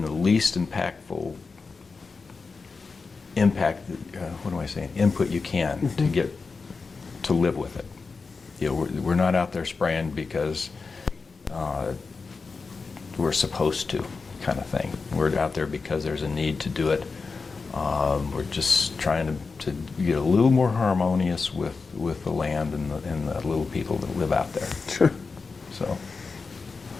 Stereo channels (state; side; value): quieter; right; 4.5 dB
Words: the least impactful input you can to get to live with it. We're not out there spraying because we're supposed to, kind of thing. We're out there because there's a need to do it. We're just trying to get a little more harmonious with the land and the little people that live out there. Sure. So